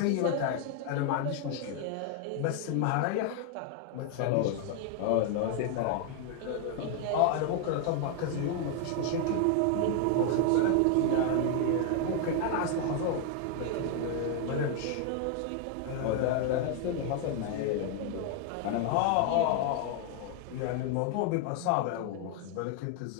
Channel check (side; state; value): both; different; correlation 0.00